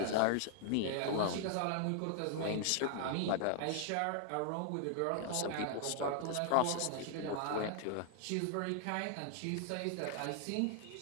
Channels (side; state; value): both; different; correlation 0.00